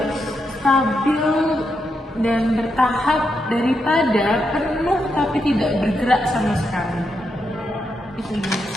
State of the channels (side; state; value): both; normal; correlation 0.83